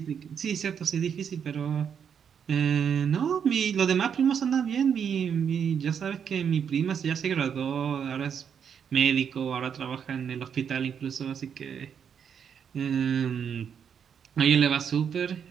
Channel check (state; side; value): quieter; left; 7.6 dB